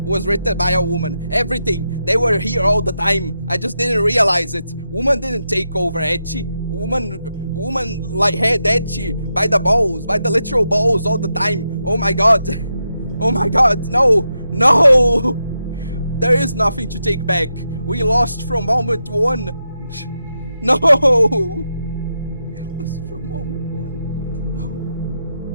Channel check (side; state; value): both; inverted; correlation -0.86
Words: was written by a woman. Everything, they were here all the time. I just didn't realize it. Woman didn't take over Ecchi. Woman like had Ecchi by the balls, by the literal balls all the time. Oh my god, oh my god, no. There is nothing to take back. We lost from moment one. No. Lost from moment one.